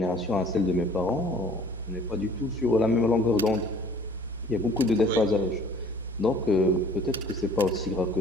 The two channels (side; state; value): left; noise; rumble, 24 dB below the sound